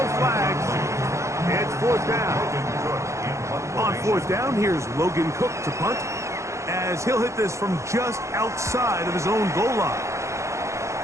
flags. It's 4th down. On 4th down, here's Logan Cook to punt, as he'll hit this from just outside of his own goal line.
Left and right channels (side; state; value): left; late; 0.14 ms